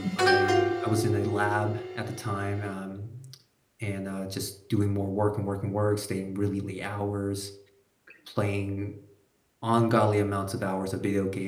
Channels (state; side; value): identical; both; correlation 1.00